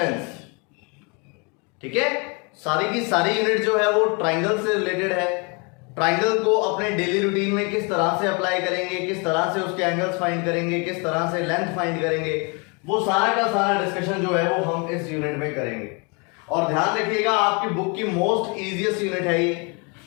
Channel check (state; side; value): quieter; right; 32.4 dB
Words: ठीक है, सारी की सारी यूनिट जो है वो ट्राइंगल से रिलेटेड है। ट्राइंगल को अपने डेली रूटीन में किस तरह से अप्लाई करेंगे, किस तरह से उसके एंगल्स फाइंड करेंगे, किस तरह से लेंथ फाइंड करेंगे, वो सारा का सारा डिस्कशन जो है वो हम इस यूनिट में करेंगे। और ध्यान रखिएगा, आपकी बुक की मोस्ट इजीएस्ट यूनिट है ये।